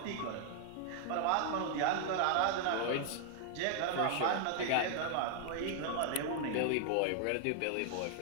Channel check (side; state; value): both; different; correlation 0.00